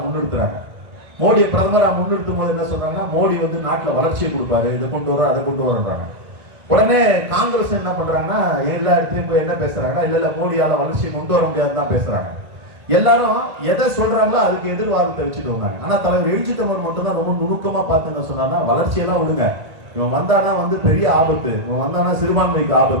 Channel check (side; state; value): left; late; 1.6 ms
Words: முன்னிறுத்துறாங்க. மோடியை பிரதமராக முன்னிறுத்தும் போது என்ன சொல்றாங்கன்னா, மோடி வந்து நாட்டில் வளர்ச்சியை கொடுப்பாரு, இதை கொண்டு வர அதை கொண்டு வரன்றாங்க. உடனே காங்கிரஸ் என்ன பண்றாங்கன்னா, எல்லா இடத்துலயும் போய் என்ன பேசுறாங்கன்னா, இல்ல மோடியால வளர்ச்சியை கொண்டு வர முடியாதுன்னு தான் பேசுறாங்க. எல்லாரும் எதை சொல்றாங்களோ அதுக்கு எதிர்வாதத்தை வச்சுட்டு வந்தாங்க. ஆனா தலைவர் எழுச்சி தமிழர் மட்டும் தான் ரொம்ப நுணுக்கமா பார்த்து என்ன சொன்னாங்கன்னா, வளர்ச்சியெல்லாம் விடுங்க, இவன் வந்தானா வந்து பெரிய ஆபத்து, இவன் வந்தானா சிறுபான்மைக்கு